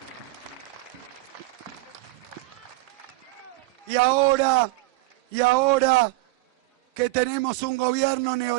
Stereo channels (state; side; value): quieter; left; 21.7 dB